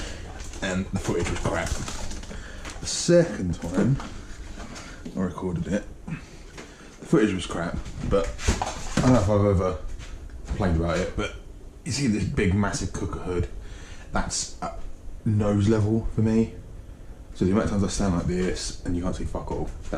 and the footage was crap. The second time I recorded it, the footage was crap, but I don't know if I've ever complained about it, but you see this big massive cooker hood, that's at nose level for me. So the amount of times I stand like this and you can't see fuck all,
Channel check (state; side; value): identical; both; correlation 1.00